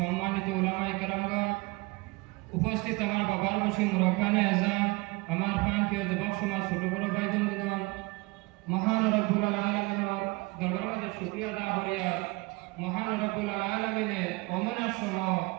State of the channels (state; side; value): quieter; left; 24.8 dB